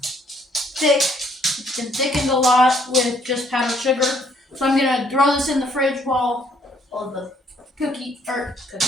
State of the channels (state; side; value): normal; both; correlation 0.66